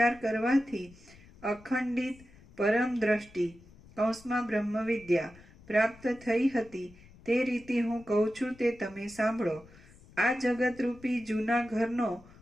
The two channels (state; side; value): noise; left; rumble, 23 dB below the sound